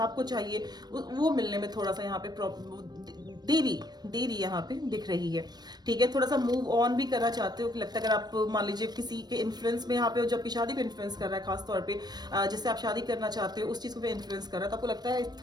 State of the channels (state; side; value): late; left; 0.19 ms